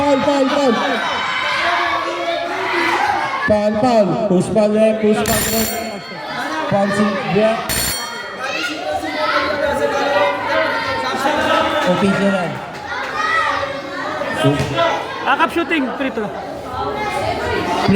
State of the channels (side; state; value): both; identical; correlation 1.00